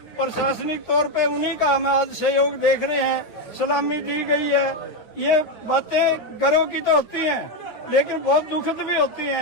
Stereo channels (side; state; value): right; late; 9.5 ms